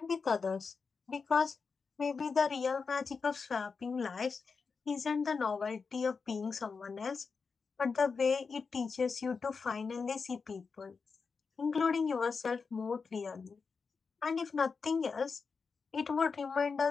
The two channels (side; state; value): right; quieter; 5.1 dB